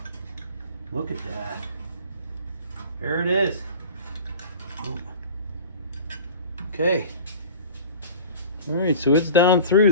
Look at that. There it is. Oh. Okay. All right, so it's down through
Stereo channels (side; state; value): both; inverted; correlation -0.40